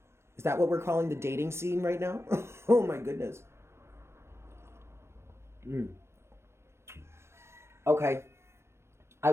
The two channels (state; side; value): late; left; 0.13 ms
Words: Is that what we're calling the dating scene right now? Oh my goodness. Okay. I